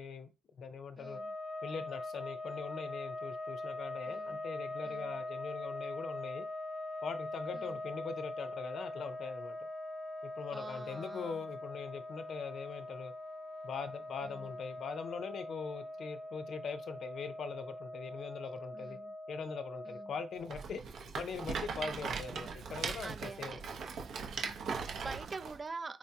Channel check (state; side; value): normal; both; correlation 0.79